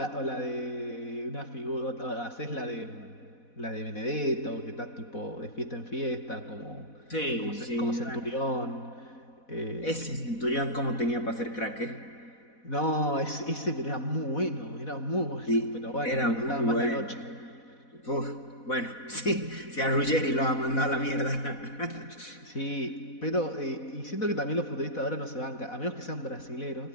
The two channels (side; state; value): right; late; 4.1 ms